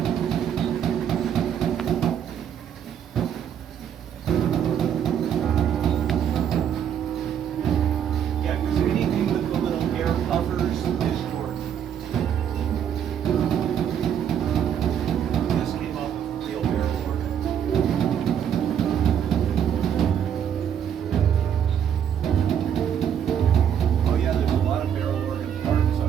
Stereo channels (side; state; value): left; quieter; 8.9 dB